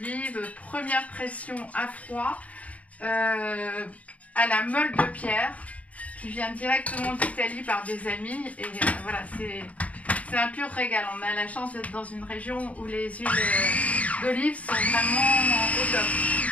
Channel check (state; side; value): late; right; 0.068 ms